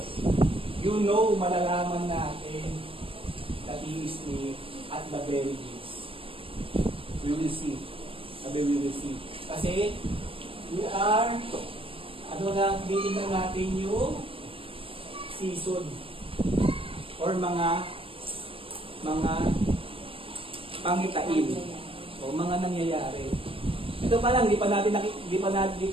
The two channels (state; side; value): late; left; 0.26 ms